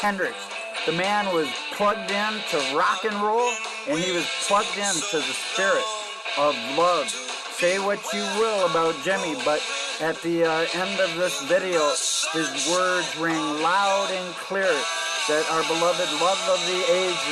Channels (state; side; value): identical; both; correlation 1.00